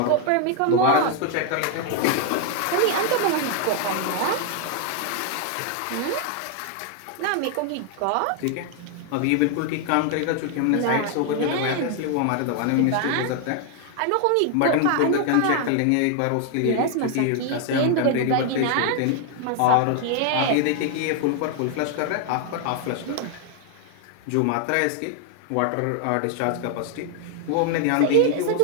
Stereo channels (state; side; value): different; both; correlation 0.00